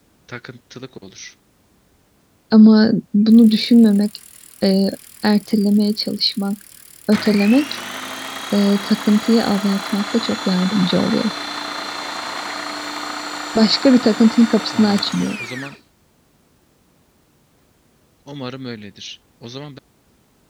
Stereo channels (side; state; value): both; identical; correlation 1.00